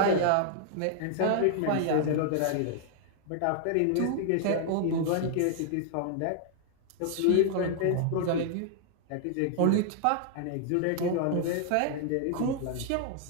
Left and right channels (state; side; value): different; both; correlation -0.01